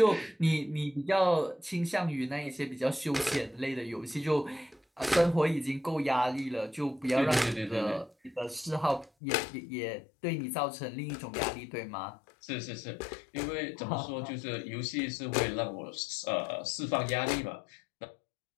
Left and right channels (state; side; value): drops out; right; at 9.1 s